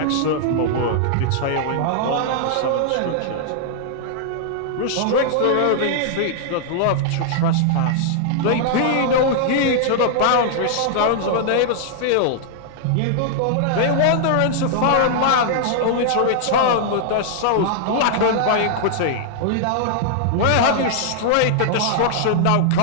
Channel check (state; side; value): different; both; correlation -0.01